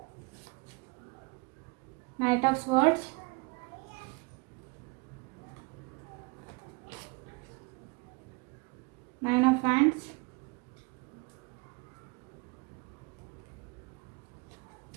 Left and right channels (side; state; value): left; quieter; 27.9 dB